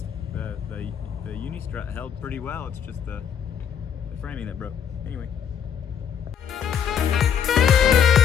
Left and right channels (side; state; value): right; quieter; 8.3 dB